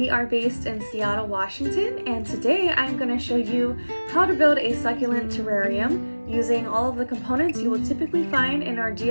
are based in Seattle, Washington, and today I'm going to show you how to build a succulent terrarium using all of the components you will typically find in our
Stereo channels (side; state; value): both; inverted; correlation -1.00